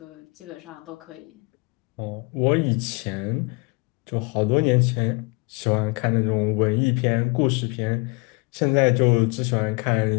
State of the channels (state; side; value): quieter; right; 30.2 dB